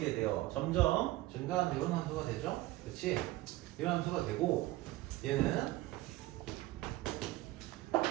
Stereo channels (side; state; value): left; quieter; 17.7 dB